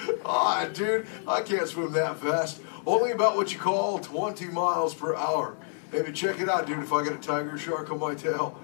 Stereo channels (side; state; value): right; silent; 59 dB below the other